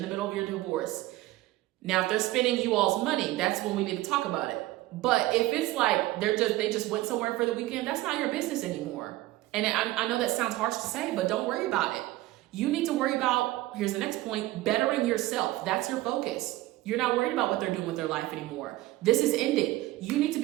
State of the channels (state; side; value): quieter; left; 17.5 dB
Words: middle of your divorce, now if they're spending you all's money, that's when we need to talk about it. But if it's like they just went somewhere for the weekend, that's not your business anymore. And I know that sounds harsh to say, but don't worry about it. You need to worry about, here's the next point, bettering yourself. That's your focus. You're not worried about what they're doing with their life anymore. This is ending. You need to